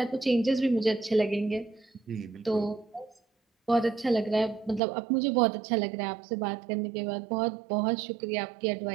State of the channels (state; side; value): drops out; left; at 4.8 s